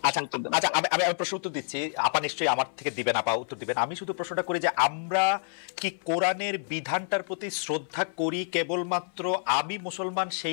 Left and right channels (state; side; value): silent; right; 59 dB below the other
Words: আচ্ছা, আমি প্রশ্ন উত্তর দিচ্ছি, আপা নিশ্চয়ই আমার থেকে দিবেন, আপা উত্তর দিবেন। আমি শুধু প্রশ্নটা করি যে আমরা কি কোরআনের বিধানটার প্রতি শ্রদ্ধা করি কেবলমাত্র আমি মুসলমান